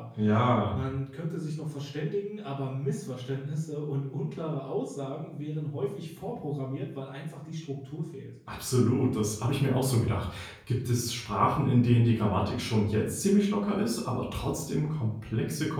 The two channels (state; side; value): identical; both; correlation 1.00